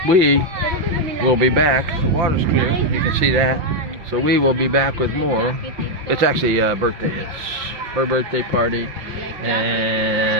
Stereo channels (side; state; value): left; late; 5.7 ms